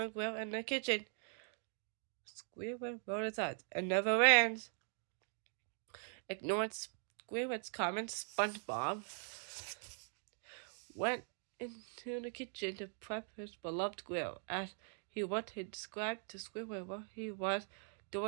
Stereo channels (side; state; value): left; silent; 50 dB below the other